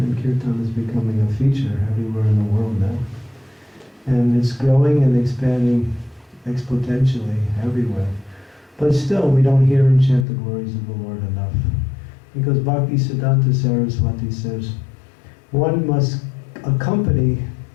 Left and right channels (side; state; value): right; drops out; at 10.2 s